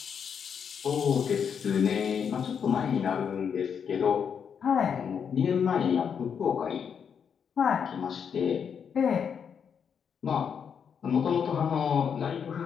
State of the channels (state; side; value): quieter; right; 7.2 dB